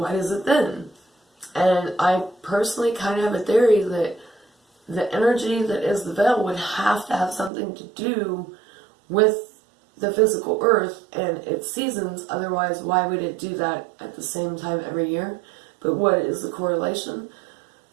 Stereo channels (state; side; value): drops out; left; at 7.5 s